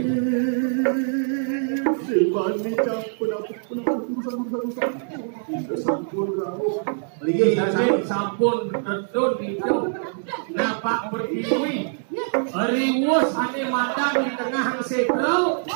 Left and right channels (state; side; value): silent; left; digital silence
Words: Sebani campur urusan. Sampun kamu. Beli Jadi sampun tetun itu. Napak berkiwi. Riwus ane madang di tengah sekro.